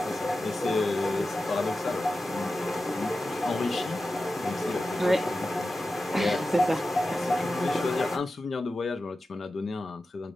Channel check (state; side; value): normal; both; correlation 0.93